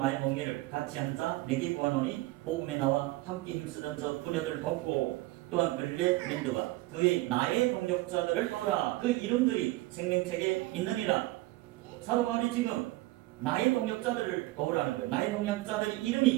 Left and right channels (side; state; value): left; quieter; 19.4 dB